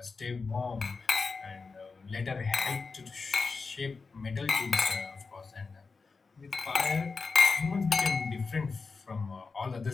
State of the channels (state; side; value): quieter; right; 4.5 dB